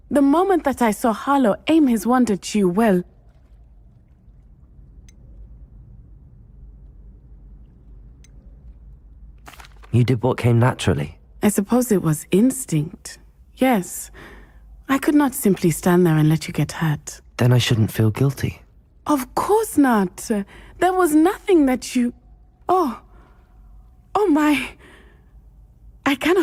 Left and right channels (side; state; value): both; identical; correlation 1.00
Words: The moment that I saw Harlow aim his wand at you, well... You did what came naturally. I suppose it was instinct. Yes. I could not simply stand there and let you get hurt. Then I shouldn't feel guilty. Of course not. There was nothing that you... Oh my... I